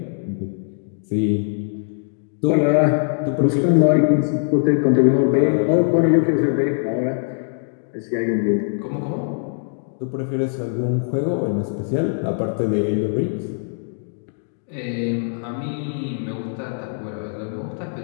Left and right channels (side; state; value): right; silent; digital silence